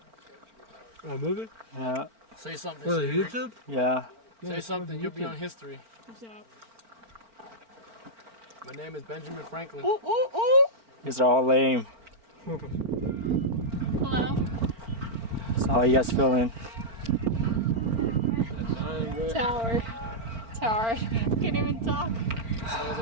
A movie? Yeah. Say something. For the Siri. YouTube? Yeah. Say something. You'll be on history. What's up? My name is Benjamin Franklin. These are all lame. Hello. So how you guys feeling? Tower. Tower. Can't even talk.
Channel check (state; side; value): late; left; 4.4 ms